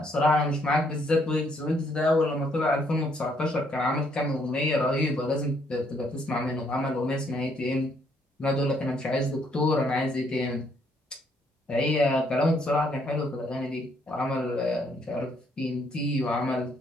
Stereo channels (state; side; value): normal; both; correlation 0.70